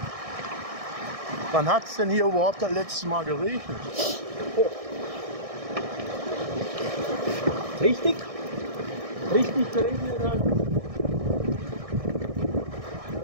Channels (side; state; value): left; late; 1.6 ms